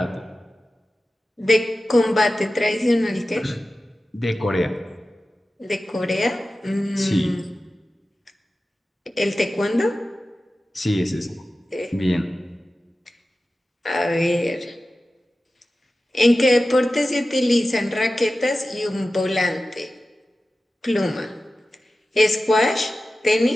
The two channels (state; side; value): normal; both; correlation 0.95